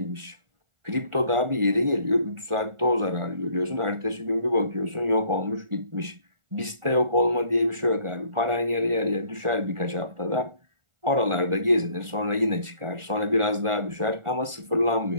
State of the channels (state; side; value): late; left; 1.4 ms